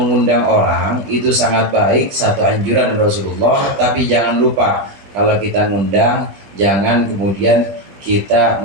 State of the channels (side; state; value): left; late; 20 ms